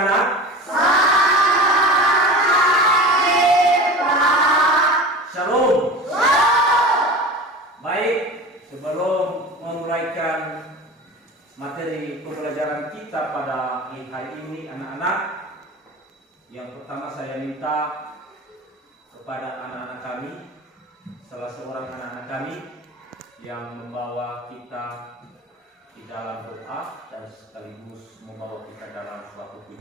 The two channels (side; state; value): both; normal; correlation 0.33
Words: Shalom. Baik, sebelum memulaikan materi pembelajaran kita pada hari ini anak-anak, yang pertama saya minta kepada anak-anak kami, salah seorang anak-anak kami yang membawa kita di dalam doa dan sekaligus membawa kita dalam suatu